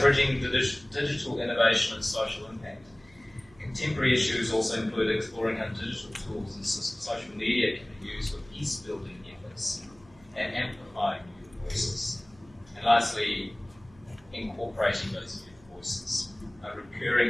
bridging digital innovation and social impact. Contemporary issues also include exploring how digital tools and social media can be used for peace-building efforts and amplifying youth voices. And lastly, incorporating those youth voices. A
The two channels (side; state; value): right; noise; hum, 27 dB below the sound